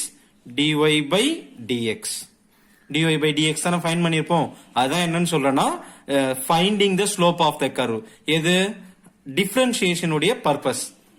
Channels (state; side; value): identical; both; correlation 1.00